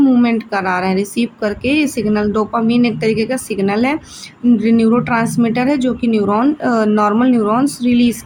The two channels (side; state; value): both; identical; correlation 1.00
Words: करा रहे हैं, रिसीव करके ये सिग्नल। डोपामिन एक तरीके का सिग्नल है, न्यूरोट्रांसमीटर है जो कि नॉर्मल न्यूरॉन्स रिलीज़